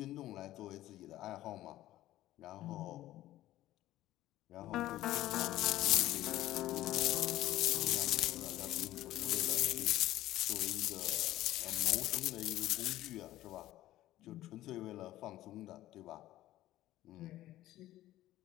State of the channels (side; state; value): right; quieter; 14.9 dB